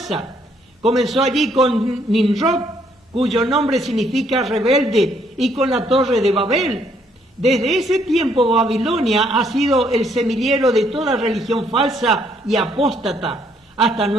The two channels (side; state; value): both; normal; correlation 0.68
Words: Comenzó allí con Nimrod, cuyo nombre significa rebelde, y con la torre de Babel. Desde ese tiempo Babilonia ha sido el semillero de toda religión falsa y apóstata hasta